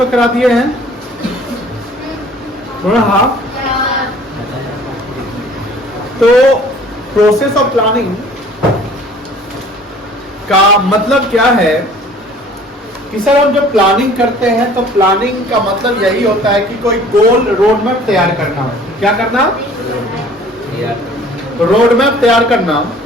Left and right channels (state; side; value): normal; both; correlation 0.51